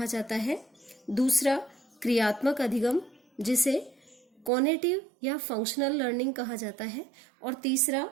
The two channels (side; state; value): left; drops out; at 4.5 s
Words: जाता है। दूसरा क्रियात्मक अधिगम, जिसे कॉग्निटिव या फंक्शनल लर्निंग कहा जाता है। और तीसरा